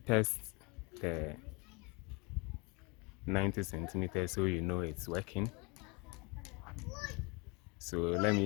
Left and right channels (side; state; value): right; quieter; 28.9 dB